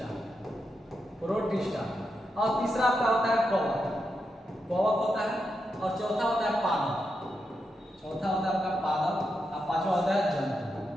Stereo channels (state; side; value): normal; both; correlation 0.85